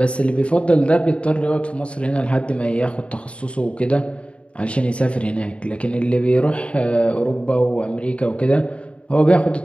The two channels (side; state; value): right; late; 0.060 ms